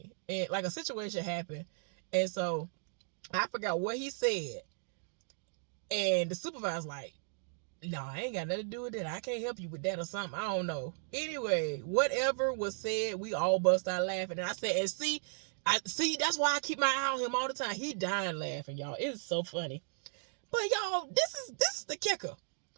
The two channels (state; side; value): silent; left; digital silence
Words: And like a situation happened. And so I forgot what he said. And the supervisor's like, no, I ain't got nothing to do with that. I can't help you with that or something. I don't know. Anyway, whatever was said, we all bust out laughing. And I said, and see, that's why I keep my eye on him all the time. He dying laughing, y'all. It's so funny. But y'all, this is the kicker.